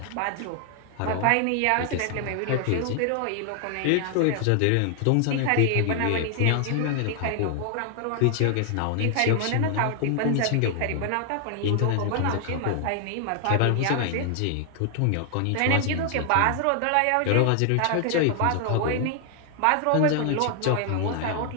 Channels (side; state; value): both; different; correlation 0.00